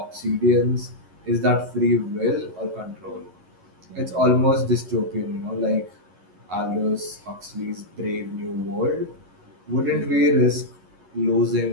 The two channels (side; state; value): left; late; 11 ms